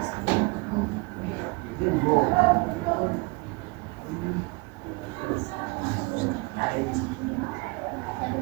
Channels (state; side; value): quieter; left; 27.9 dB